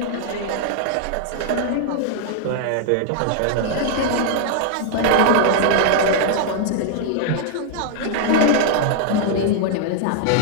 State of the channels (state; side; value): different; both; correlation -0.01